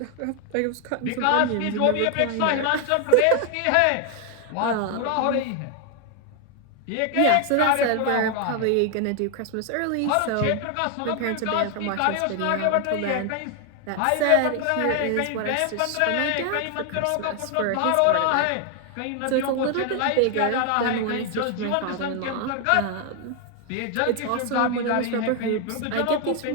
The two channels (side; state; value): both; different; correlation 0.00